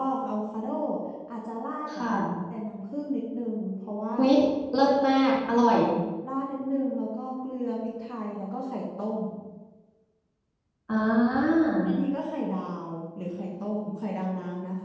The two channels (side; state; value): both; identical; correlation 1.00